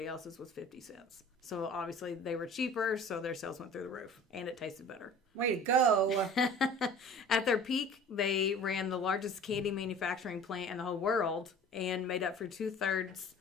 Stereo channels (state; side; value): normal; both; correlation 0.45